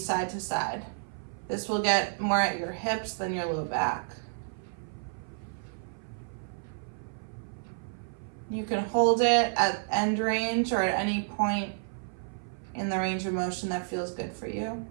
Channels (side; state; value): left; silent; 56 dB below the other